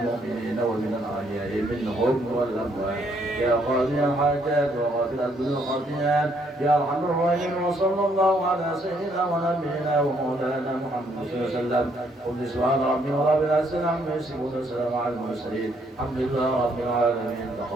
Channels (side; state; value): both; normal; correlation 0.70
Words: ومن الأحياء منهم والأموات يا قاضي الحاجات وغافل الذنوب والخطيئات يا أرحم الراحمين وصلى الله على سيدنا ونبينا ومولانا محمد صلى الله عليه وسلم قل سبحان ربي ورب العزة عما يصفون وسلام على المرسلين الحمد لله رب العالمين